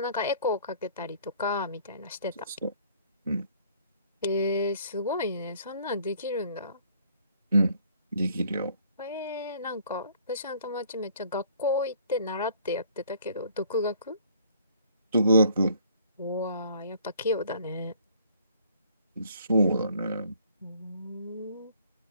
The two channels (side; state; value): both; inverted; correlation -0.58